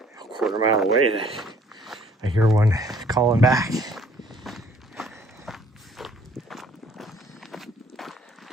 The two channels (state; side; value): normal; both; correlation 0.59